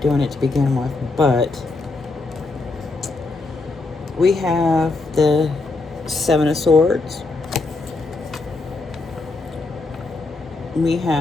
doing it to begin with, but we have the Seven of Swords. We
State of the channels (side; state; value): right; quieter; 3.5 dB